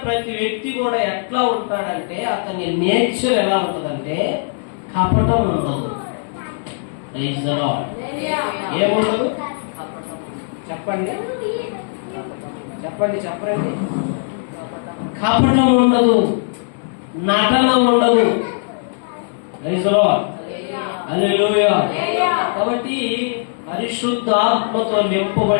ప్రతి వ్యక్తి కూడా ఎట్లా ఉంటాడంటే, అతని నేచర్ ఎలా ఉంటుందంటే కపటం ఉండదు. ఏముండదు? చెప్పండి చెప్పండి చెప్పండి. కపటం ఉండదు, నటన ఉండదు. హల్లెలూయా. కాబట్టి పరిశుద్ధాత్మతో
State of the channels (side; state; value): right; silent; digital silence